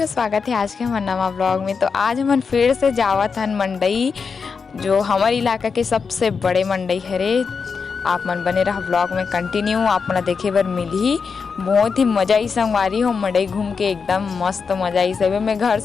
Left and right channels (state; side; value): quieter; right; 5.5 dB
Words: स्वागत है आज के हमारे नवा ब्लॉग में। तो आज हम फिर से जावत हन मंडई, जो हमारे इलाका के सबसे बड़े मंडई हरे। आप मन बने रहा ब्लॉग में कंटिन्यू, आप मन देखे बर मिलही। बहुत ही मजा आई संगवारी हो, मंडई घूम के एकदम मस्त मजा आई। सब मैं घर